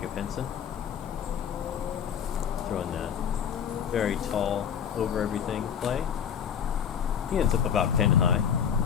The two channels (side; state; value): right; quieter; 8.1 dB